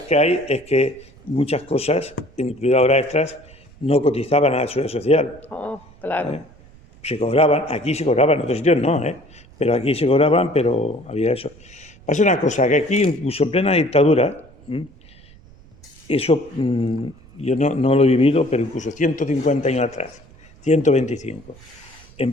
que hay es que muchas cosas, incluidas horas extras, no cotizaban a la seguridad social. Claro. Se cobraban, aquí se cobraban, en otros sitios no, pero aquí se cobraban, pero había eso. Pasa una cosa, que aquí, incluso en plena dictadura, eso yo no lo he vivido, pero incluso 150 años atrás, 125,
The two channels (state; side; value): noise; right; rumble, 24 dB below the sound